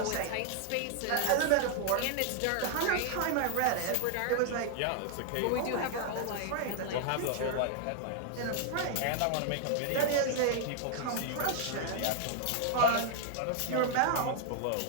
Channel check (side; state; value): both; different; correlation 0.00